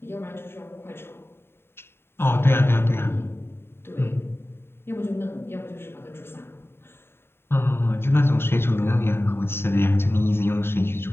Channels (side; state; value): right; late; 0.11 ms